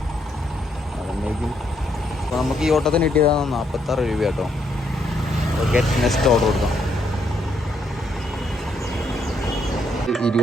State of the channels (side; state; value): both; normal; correlation 0.74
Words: അതുകൊണ്ടേക്കും. അപ്പോൾ നമുക്ക് ഈ ഓട്ടത്തിന് കിട്ടിയതാണ് 46 രൂപ കേട്ടോ. ഗെറ്റ് നെക്സ്റ്റ് ഓർഡർ കൊടുക്കാം.